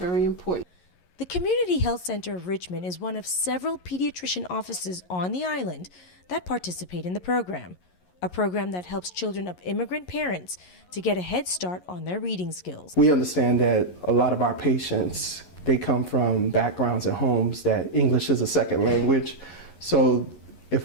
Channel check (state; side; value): late; right; 11 ms